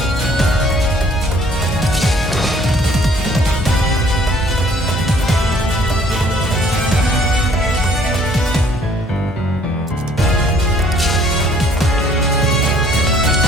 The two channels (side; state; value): both; normal; correlation 0.59